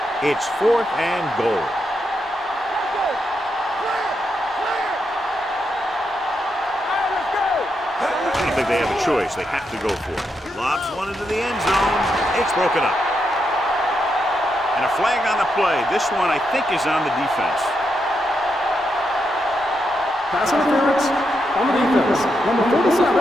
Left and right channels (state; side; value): normal; both; correlation 0.83